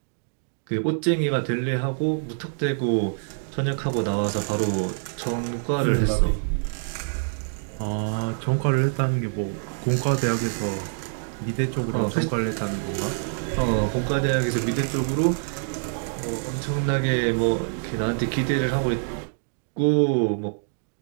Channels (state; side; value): silent; left; digital silence